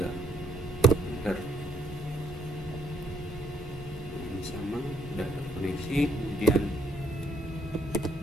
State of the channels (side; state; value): both; normal; correlation 0.68